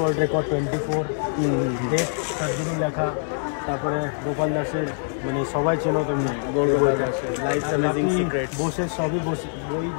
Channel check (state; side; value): silent; right; 62 dB below the other